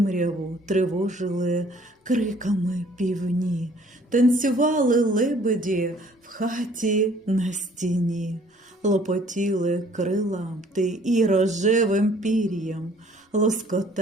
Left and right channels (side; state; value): both; normal; correlation 0.57